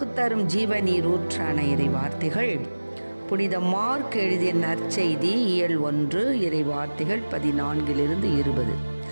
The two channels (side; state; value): both; inverted; correlation -1.00